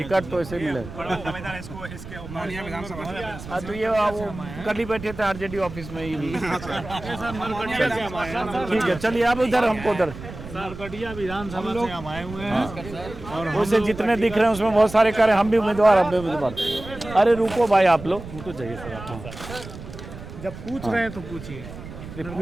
तो ऐसे मिले। हाँ, तो ये वो कल ही बैठे थे आरजेडी ऑफिस में ही भी। ठीक है, चलिए आप उधर, हमको उधर नरकटिया विधानसभा से हम आए हुए हैं। और वैसे जितने दिख रहे हैं उसमें बहुत सारे कार्य, हम भी उम्मीदवार, हम भी उम्मीदवार। अरे रुको भाई, आप लोग रुको, चाहिए सर। जब पूछ रहे हैं तो पूछिए।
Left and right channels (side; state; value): right; noise; rumble, 13 dB below the sound